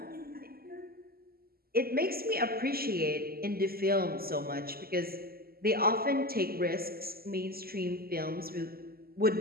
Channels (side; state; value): left; late; 0.44 ms